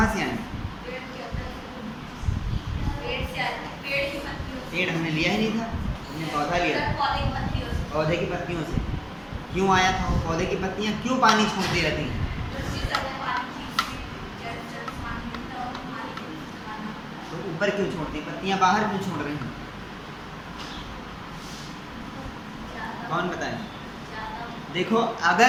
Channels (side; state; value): both; identical; correlation 1.00